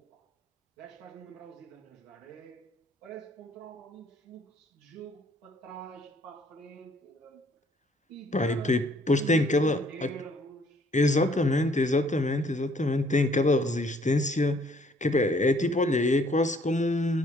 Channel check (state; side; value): normal; both; correlation 0.62